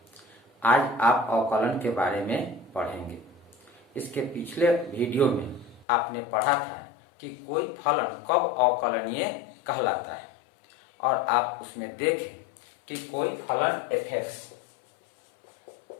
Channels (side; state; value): right; drops out; at 5.9 s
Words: आज आप अवकलन के बारे में पढ़ेंगे। इसके पिछले वीडियो में आपने पढ़ा था कि कोई फलन कब अवकलनीय कहलाता है और आप उसमें देखें कि कोई फलन f(x)